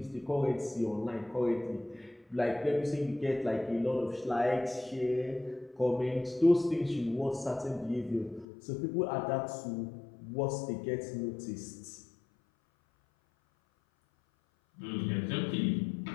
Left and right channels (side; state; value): right; drops out; at 8.5 s